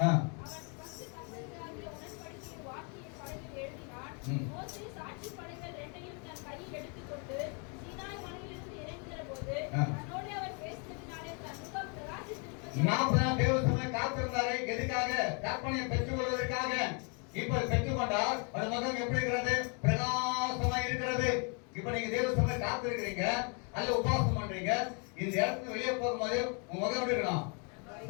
அவன் 10 கட்டளைகளாகிய உடன்படிக்கையின் வாக்கிய பலகையில் எழுதினான். மோசே சாட்சி பலகைகள் 2ஐயும் தன் கையில் எடுத்துக்கொண்டு சீனாய் மலையிலிருந்து இறங்குகிற போது தன்னோடு அவர் பேசினதினாலே தன் முகம் பிரகாசித்திருப்பது. 40 நாள் தேவ சபை காத்திருந்தாரு. எதுக்காக? கற்பனையை பெற்றுக் கொள்வதற்காக. இப்ப பெற்றுக்கொண்டால் அந்த முகம் எப்படி இருக்கிறது? பிரகாசமா இருக்கிறது. இப்ப நீங்க தேவ சபை காத்திருக்கிறீங்க, அல்ல உபாசம் பண்றீங்க, இந்த இடத்துல வெளியே போகும்போது உங்க முகம் எப்படி இருக்கணும்?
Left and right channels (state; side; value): quieter; right; 36.3 dB